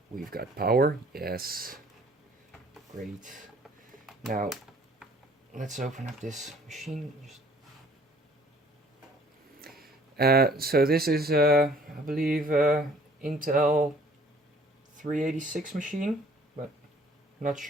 we've got power. Yes, great. Now let's open up this machine. So this is I believe Intel 386 machine, but not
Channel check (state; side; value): normal; both; correlation 0.56